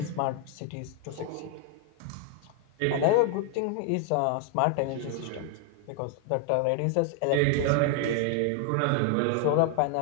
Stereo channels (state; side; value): different; both; correlation 0.00